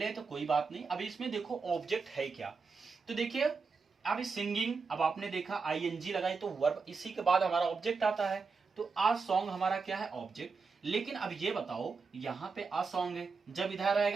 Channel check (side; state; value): left; quieter; 4.8 dB